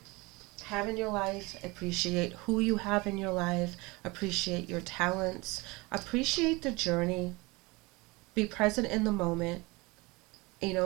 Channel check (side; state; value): left; quieter; 24.5 dB